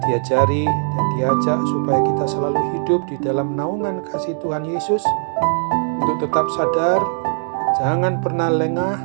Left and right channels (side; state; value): left; silent; 63 dB below the other